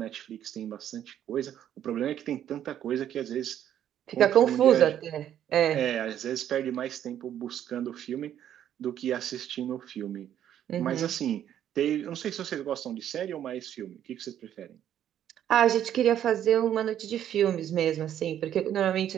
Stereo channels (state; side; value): quieter; left; 10.6 dB